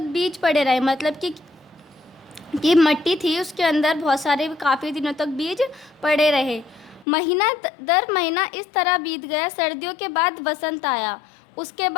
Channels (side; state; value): right; drops out; at 7.1 s